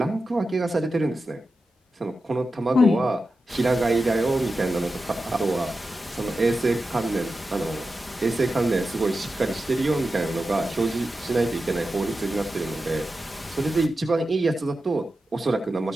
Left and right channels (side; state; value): both; normal; correlation 0.91